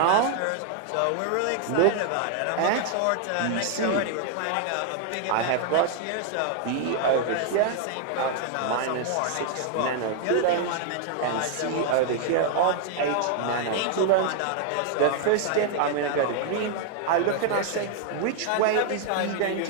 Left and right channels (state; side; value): different; both; correlation 0.00